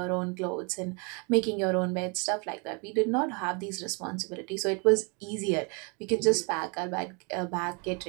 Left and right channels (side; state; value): left; quieter; 33.1 dB